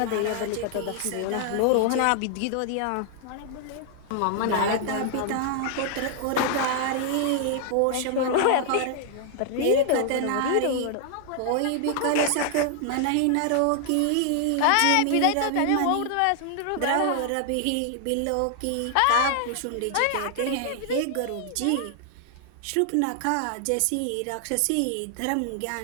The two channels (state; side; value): different; both; correlation 0.00